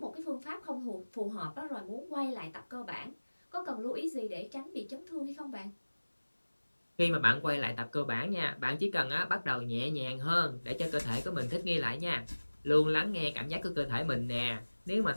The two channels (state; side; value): inverted; both; correlation -1.00